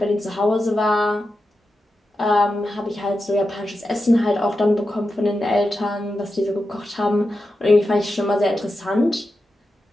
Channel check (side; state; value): both; normal; correlation 0.90